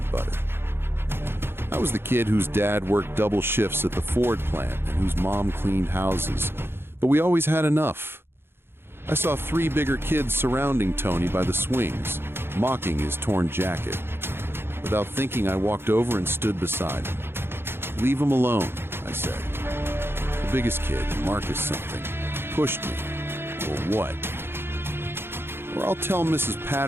butter. I was the kid whose dad worked double shifts at the Ford plant and whose mom cleaned houses, but we always had enough. I saw 3 bigger kids surrounding Tony by the swings, mocking his torn jacket. Without thinking, I walked over and stood beside him. "Leave him alone," I said. The biggest kid, Marcus something, pushed me. "Or what?" "Or I'll tell Mrs.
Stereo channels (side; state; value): left; late; 0.11 ms